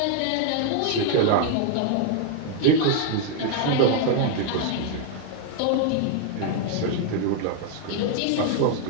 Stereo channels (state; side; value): different; both; correlation 0.00